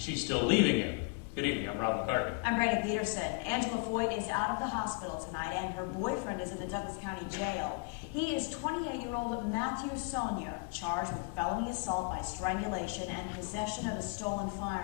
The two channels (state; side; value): quieter; right; 28.3 dB